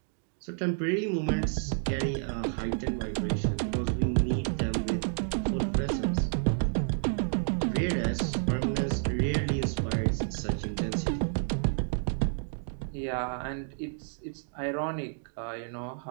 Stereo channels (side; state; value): left; silent; 58 dB below the other